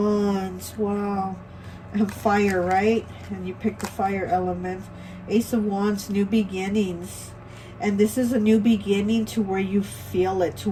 Wow. And fire, right? And you picked the fire element. Ace of Wands, new beginnings. And this is a new beginning to where you feel it, to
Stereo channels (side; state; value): both; identical; correlation 1.00